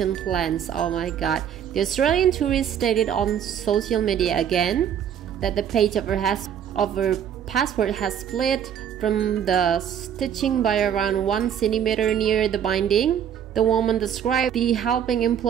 plans. Oh my god. The Australian tourist stated on social media again that the page of her passport has split from the stitching by around 1 centimeter near the binding. The woman described the helping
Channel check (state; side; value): quieter; left; 9.0 dB